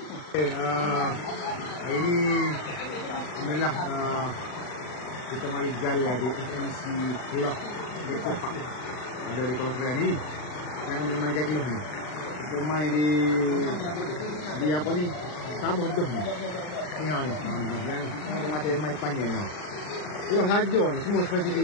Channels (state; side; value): late; right; 40 ms